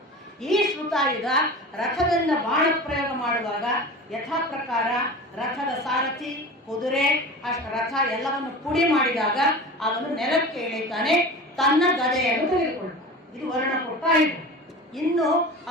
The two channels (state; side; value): normal; both; correlation 0.34